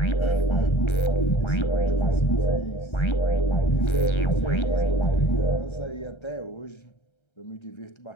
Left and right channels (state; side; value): late; right; 1.3 ms